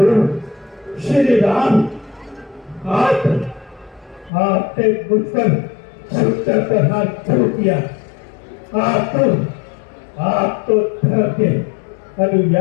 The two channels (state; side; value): drops out; right; at 4.3 s